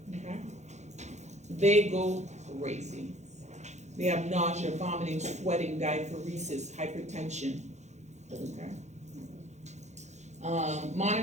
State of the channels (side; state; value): left; late; 0.33 ms